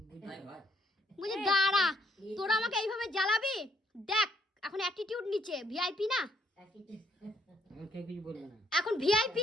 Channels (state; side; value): normal; both; correlation 0.69